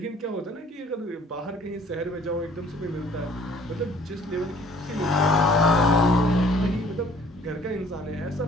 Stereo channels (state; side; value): normal; both; correlation 0.55